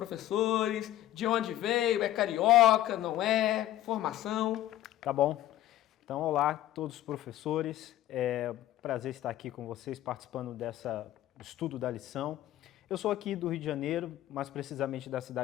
de onde veio, é carioca, não é, formação. Tá bom. Então, olá a todos os professores. É um prazer estar aqui com vocês participando dessa estudo da lição. Eu sou aqui do Rio de Janeiro, mais precisamente da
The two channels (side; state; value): right; quieter; 13.7 dB